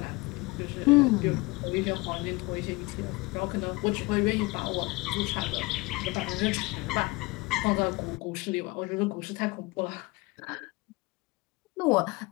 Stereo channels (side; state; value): right; quieter; 23.9 dB